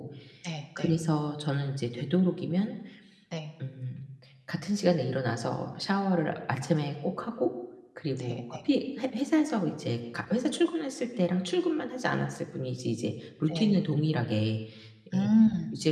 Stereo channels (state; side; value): identical; both; correlation 1.00